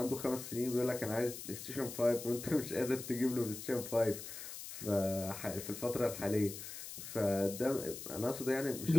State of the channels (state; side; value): noise; left; hiss, 10 dB below the sound